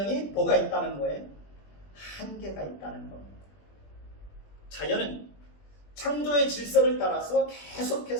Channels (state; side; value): late; right; 21 ms